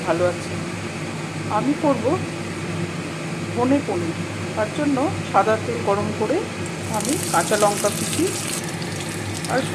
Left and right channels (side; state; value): both; identical; correlation 1.00